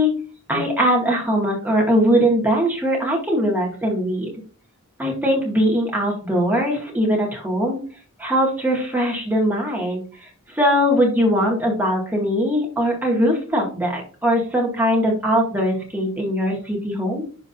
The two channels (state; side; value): normal; both; correlation 0.51